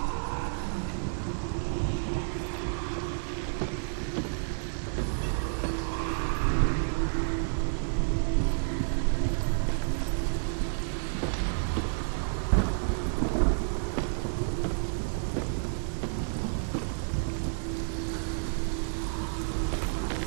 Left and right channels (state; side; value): silent; left; digital silence